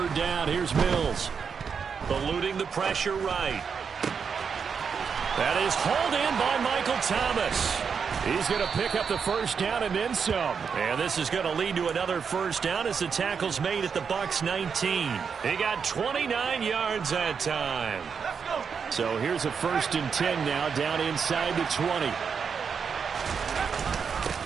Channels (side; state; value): left; quieter; 6.3 dB